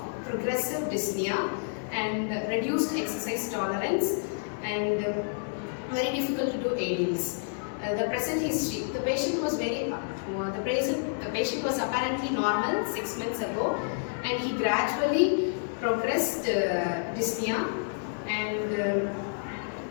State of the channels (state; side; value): silent; right; digital silence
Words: progressive dyspnea, and reduced exercise tolerance, and very difficult to do aerials. The present history: the patient was the patient was apparently normal 6 months ago, and he gradually progressed dyspnea and